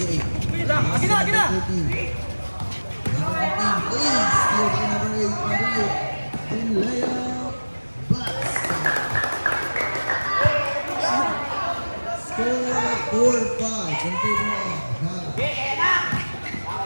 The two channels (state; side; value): inverted; both; correlation -1.00